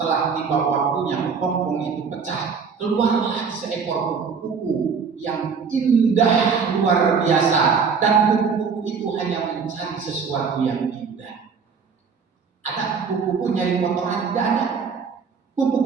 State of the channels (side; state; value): left; quieter; 5.7 dB